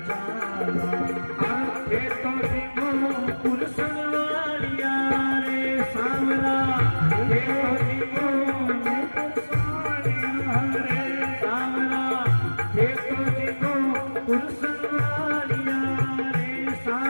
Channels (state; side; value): inverted; both; correlation -1.00